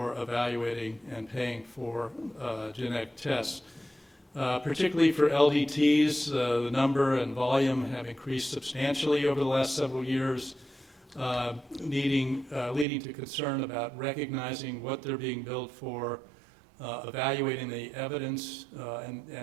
evaluating and paying for genetic tests. Particularly for LDTs, the number and volume have increased substantially over the last several years, leading to concern about recognizing what they're being billed for, evaluating the evidence,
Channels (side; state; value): left; drops out; at 12.9 s